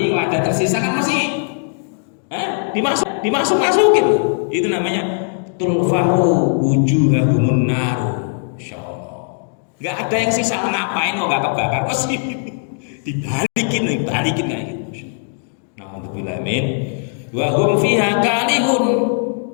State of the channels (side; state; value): right; silent; 67 dB below the other